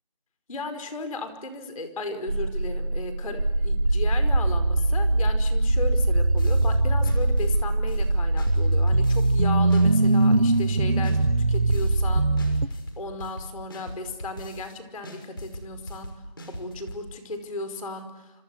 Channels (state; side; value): inverted; both; correlation -0.84